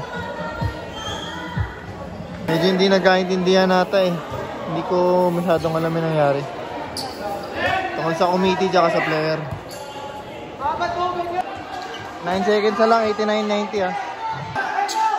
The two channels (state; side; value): identical; both; correlation 1.00